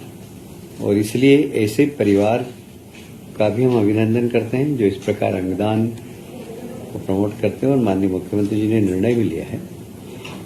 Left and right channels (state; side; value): identical; both; correlation 1.00